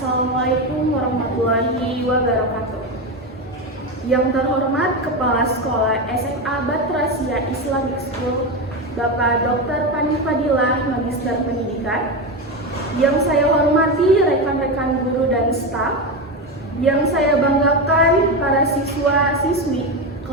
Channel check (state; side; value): normal; both; correlation 0.16